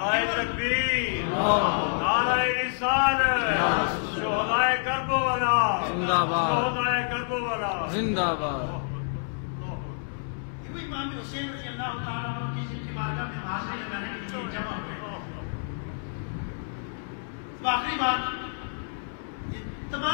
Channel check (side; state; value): right; silent; 59 dB below the other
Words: تکبیر، نعرہ رسالت، شہدائے کربلا زندہ باد، شہدائے کربلا زندہ باد۔ یہ امام حسین رضی اللہ تعالیٰ عنہ کی جن کی بارگاہ میں حاضری لگانے کے لیے جمع ہوئے۔ آخری بات، یہ